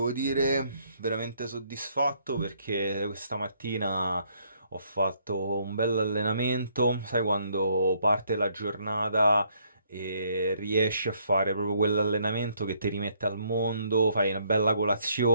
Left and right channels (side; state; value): both; inverted; correlation -0.68